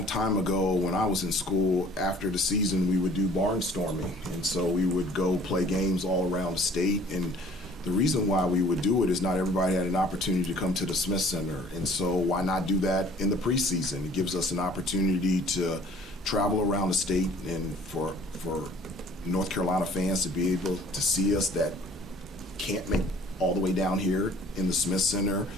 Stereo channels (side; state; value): both; normal; correlation 0.52